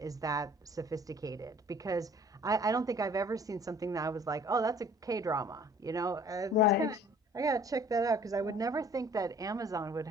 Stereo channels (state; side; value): normal; both; correlation 0.53